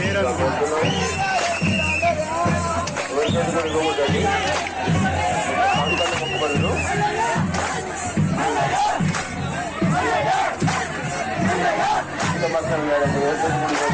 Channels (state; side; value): identical; both; correlation 1.00